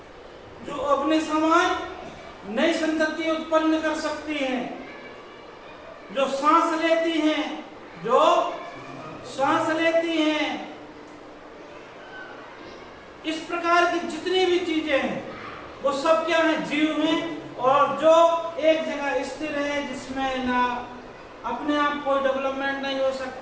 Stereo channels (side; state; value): both; identical; correlation 1.00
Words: जो अपने समान नई संतति उत्पन्न कर सकती हैं, जो सांस लेती हैं, जो सांस लेती हैं, इस प्रकार की जितनी भी चीजें हैं वो सब क्या है, जीव हैं। और जो एक जगह स्थिर है, जिसमें ना अपने आप कोई डेवलपमेंट नहीं हो